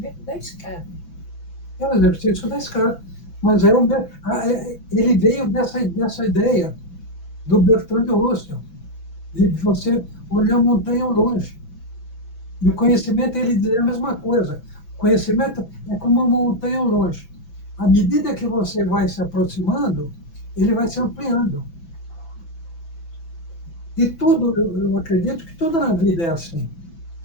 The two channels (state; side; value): late; right; 6.0 ms